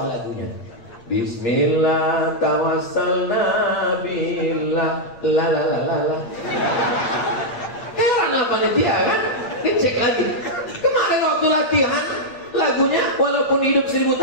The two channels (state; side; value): late; right; 8.6 ms